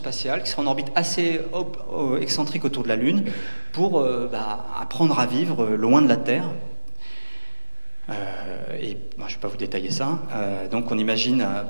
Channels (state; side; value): inverted; both; correlation -1.00